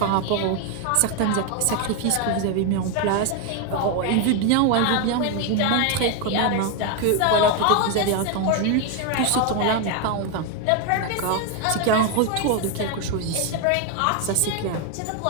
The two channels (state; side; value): different; both; correlation 0.01